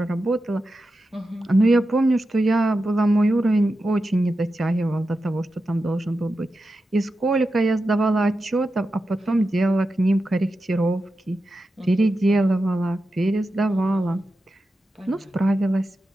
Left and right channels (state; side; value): normal; both; correlation 0.90